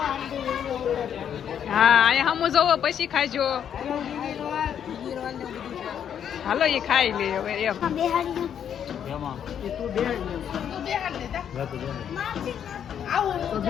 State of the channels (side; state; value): right; quieter; 8.8 dB